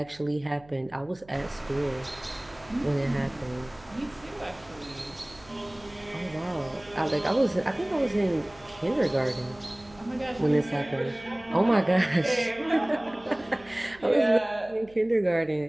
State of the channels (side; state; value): right; noise; hum, 24 dB below the sound